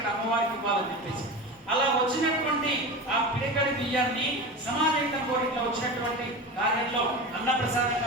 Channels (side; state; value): both; normal; correlation 0.28